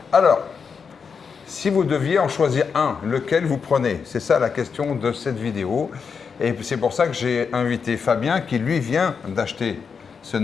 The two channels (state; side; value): quieter; right; 5.9 dB